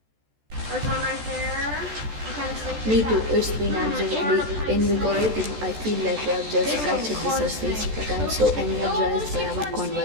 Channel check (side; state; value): left; late; 14 ms